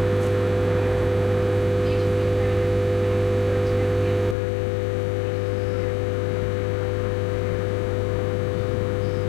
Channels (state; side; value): drops out; right; at 4.4 s